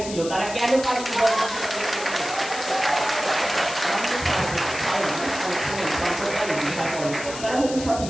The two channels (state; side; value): noise; left; hiss, 10 dB below the sound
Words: ছিল, তারা কেন পারেনি? তারা হয়তো সঠিক